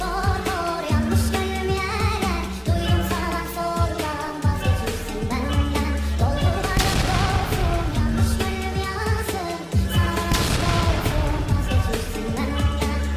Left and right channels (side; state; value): both; identical; correlation 1.00